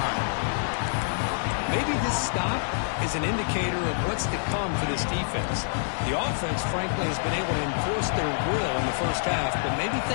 Maybe this stop is an indicator of what's to come for this defense. The offense, frankly, has been able to enforce their will in the first half, but maybe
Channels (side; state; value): right; silent; 59 dB below the other